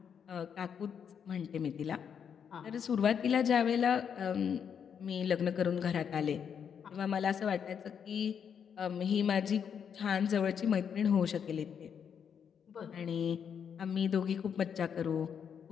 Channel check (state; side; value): quieter; right; 7.6 dB